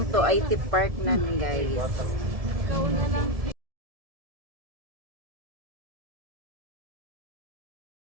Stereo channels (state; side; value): late; left; 1.7 ms